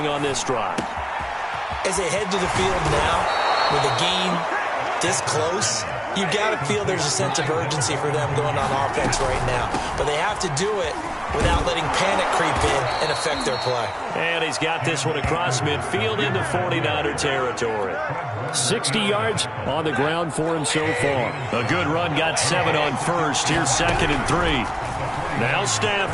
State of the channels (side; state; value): both; identical; correlation 1.00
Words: on this drive. As they head to the field now, with the game this close, you've got to feel there's a sense of urgency for them going on offense right now. But they have to do it without letting panic creep in and affect their play. And he's got this one across midfield into 49er territory. 60 yards on the ground for him so far. A good run, got 7 on first. Here's 2nd and 3. Now